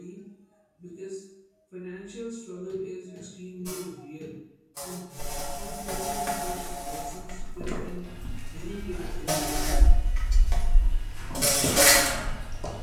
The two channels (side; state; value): both; identical; correlation 1.00